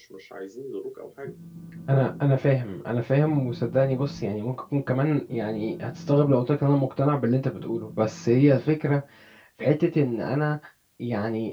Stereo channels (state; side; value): identical; both; correlation 1.00